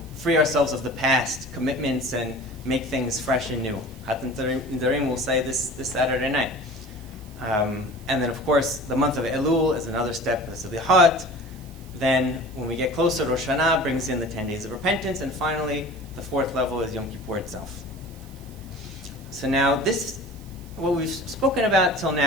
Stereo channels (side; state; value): right; noise; hiss, 24 dB below the sound